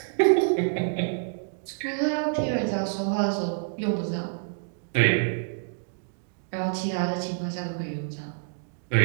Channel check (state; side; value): silent; left; digital silence